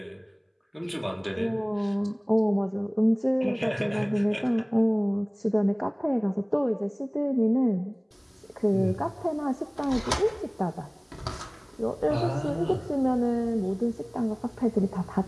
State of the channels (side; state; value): both; identical; correlation 1.00